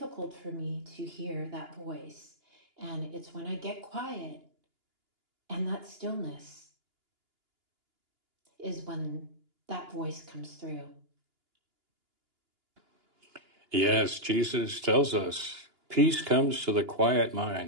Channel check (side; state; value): left; late; 2.9 ms